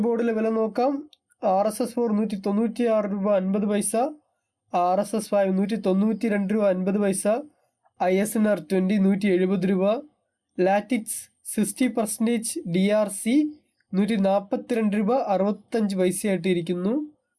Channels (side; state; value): both; identical; correlation 1.00